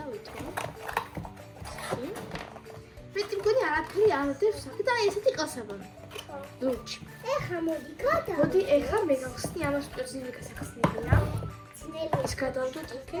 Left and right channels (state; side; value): identical; both; correlation 1.00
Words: ვითო. მეტი მგონი არაფერი არ დევს და აი ესეთი ყელსაბამი. ლუჩი. ეხა მოდი გადა. მოდი ეხა მე გავხსნი ამას პერსინული გასახსნელია. ეს გადავდოთ